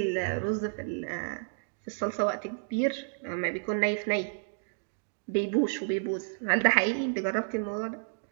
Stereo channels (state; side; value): silent; left; digital silence